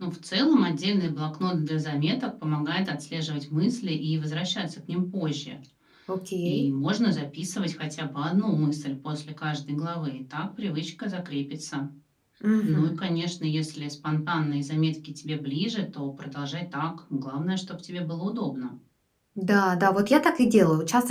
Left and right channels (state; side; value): identical; both; correlation 1.00